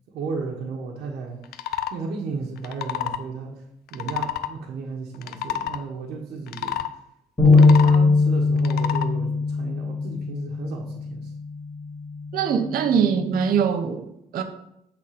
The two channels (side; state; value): both; normal; correlation 0.66